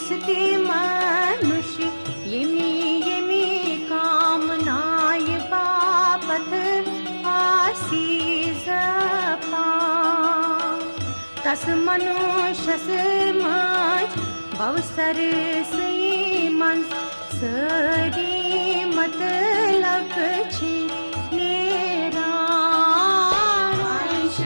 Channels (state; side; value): inverted; both; correlation -1.00